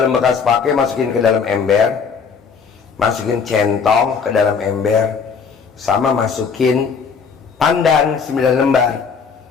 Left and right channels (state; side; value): quieter; right; 5.9 dB